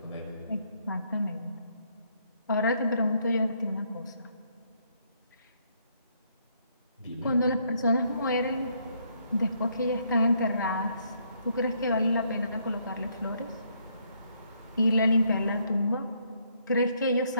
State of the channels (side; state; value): both; inverted; correlation -0.71